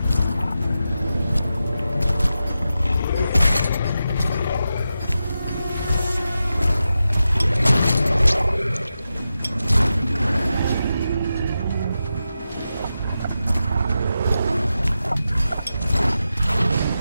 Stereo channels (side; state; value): both; inverted; correlation -0.90